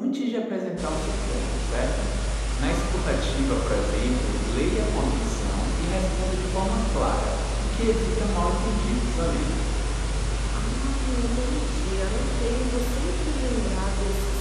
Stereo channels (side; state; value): both; identical; correlation 1.00